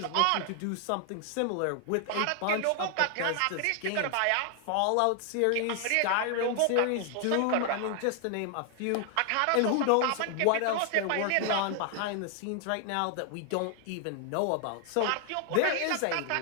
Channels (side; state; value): both; different; correlation 0.00